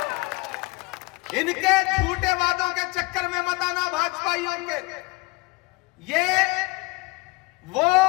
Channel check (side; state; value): right; quieter; 24.7 dB